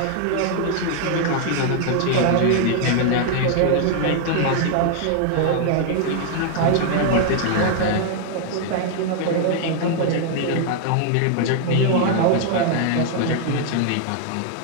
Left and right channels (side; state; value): both; different; correlation 0.00